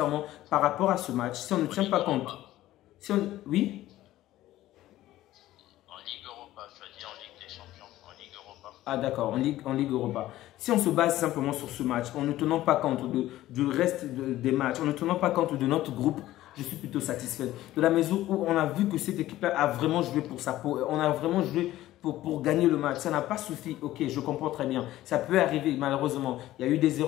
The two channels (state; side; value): quieter; right; 15.0 dB